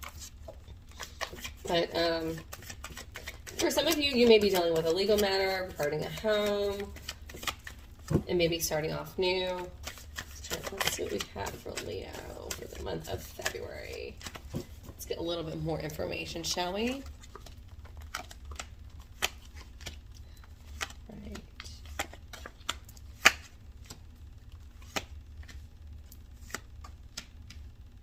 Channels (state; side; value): identical; both; correlation 1.00